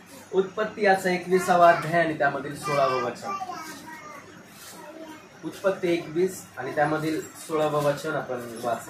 उत्पत्ती याचा 21वा अध्याय आणि त्यामधील 16वं वचन. उत्पत्ती 21 आणि त्यामधील 16वं वचन आपण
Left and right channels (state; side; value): identical; both; correlation 1.00